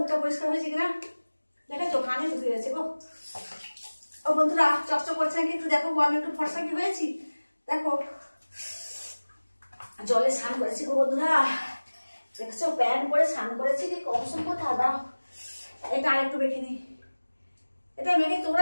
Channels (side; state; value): both; inverted; correlation -1.00